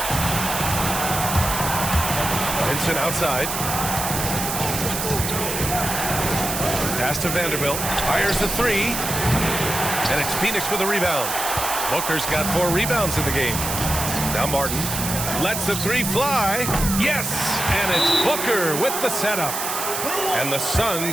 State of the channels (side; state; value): right; noise; hiss, 3 dB below the sound